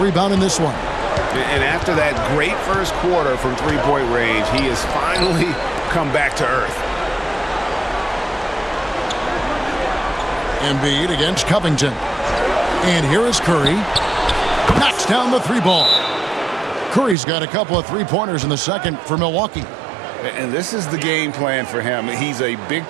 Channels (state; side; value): drops out; left; at 17.2 s